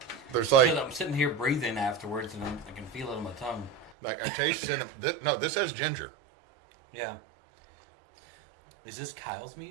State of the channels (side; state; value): left; drops out; at 4.0 s